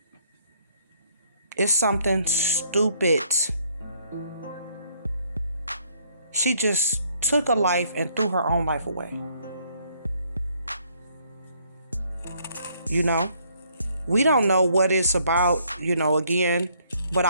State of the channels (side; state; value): both; inverted; correlation -0.67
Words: It's something stupid. She just took a life and threw her own life away. You know? We don't know what it's about, again, but